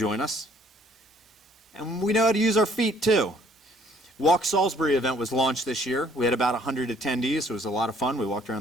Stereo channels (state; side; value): normal; both; correlation 0.61